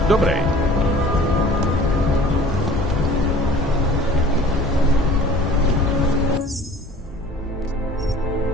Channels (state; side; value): normal; both; correlation 0.47